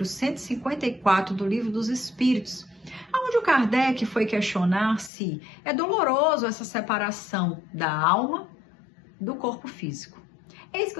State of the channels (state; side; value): drops out; right; at 5.1 s